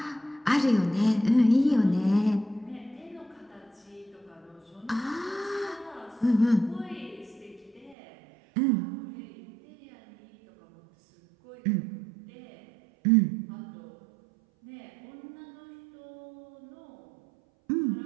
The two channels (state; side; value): drops out; left; at 8.0 s